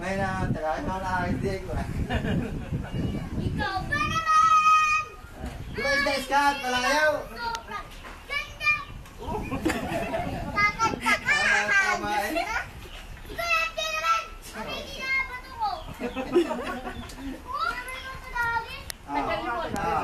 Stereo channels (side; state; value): both; identical; correlation 1.00